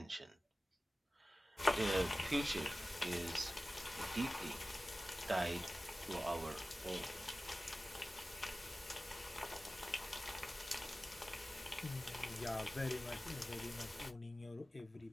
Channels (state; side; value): normal; both; correlation 0.96